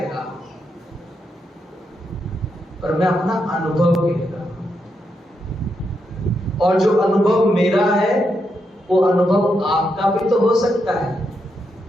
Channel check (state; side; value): normal; both; correlation 0.82